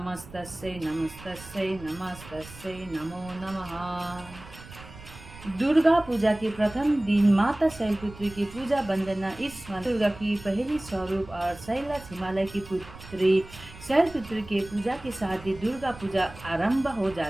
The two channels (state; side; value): noise; right; rumble, 17 dB below the sound